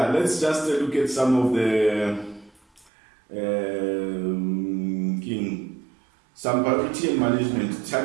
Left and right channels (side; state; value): left; drops out; at 2.9 s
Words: let's just look at some of the some priority and management,